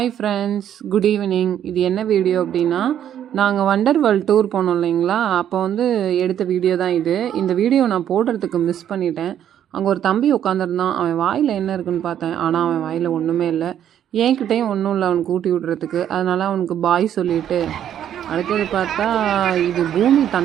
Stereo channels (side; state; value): left; quieter; 10.2 dB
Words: friends, good evening. இது என்ன video அப்படின்னா, நாங்கள் வண்டர் வேர்ல்ட் டூர் போனோம் இல்லைங்களா, அப்போ வந்து எடுத்த வீடியோ தான் இது. இந்த வீடியோ நான் போடுறதுக்கு மிஸ் பண்ணிட்டேன். அங்கே ஒரு தம்பி உட்காந்துருந்தான். அவன் வாயில் என்ன இருக்குன்னு பார்த்தேன், ஆனால் அவன் வாயில் ஒன்றுமே இல்லை. என்கிட்டையும் ஒன்றும் இல்லை அவனுக்கு ஊட்டி விடுறதுக்கு. அதனால் அவனுக்கு பாய் சொல்லிவிட்டு, அடுத்தது பார்த்தா இது பூமி